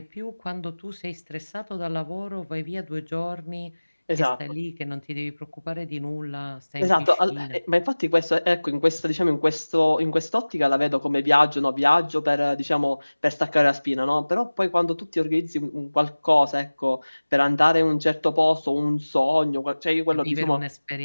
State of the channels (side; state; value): both; inverted; correlation -1.00